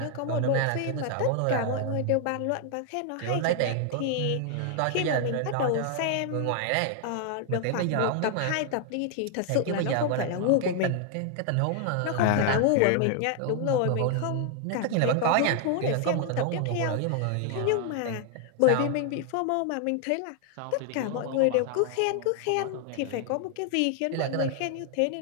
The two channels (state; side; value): different; both; correlation 0.00